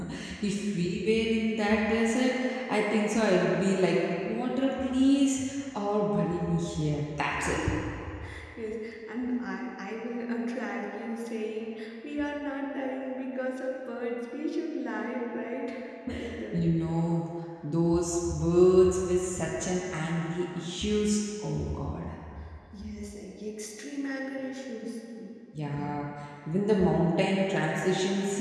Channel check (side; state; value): both; identical; correlation 1.00